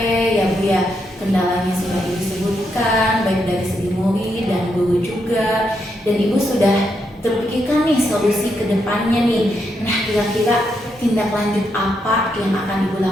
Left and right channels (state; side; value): normal; both; correlation 0.80